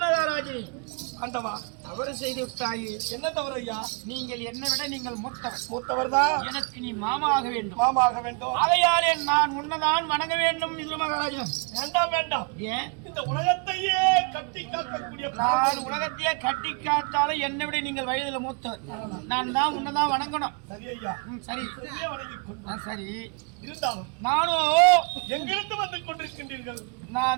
மகாராஜனே, ஆண்டவா, தவறு செய்து விட்டாயே. என்ன தவறு ஐயா? நீங்கள் என்னை விட நீங்கள் மூத்தவர் தான். எனக்கு நீ மாமாக வேண்டும். மாமாக வேண்டும். ஆகையாலே நான் உன்னதான் வணங்க வேண்டும். விதுர மகாராஜன், வேண்டாம். ஏன்? இந்த உலகத்தையே கட்டி காக்கக்கூடிய நான் உலகத்தையே கட்டி காத்தாலும் என்னை விட நீங்கள் வயதுல மூத்தவர். நான் தான் உன்னதான் வணங்கணும். சரி ஐயா, சரி வணங்கிக் கொண்டு சரி. இருந்தாலும் நானும் எங்கிருந்து வந்து கொண்டிருக்கின்றீர்கள்?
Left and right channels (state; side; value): quieter; left; 35.1 dB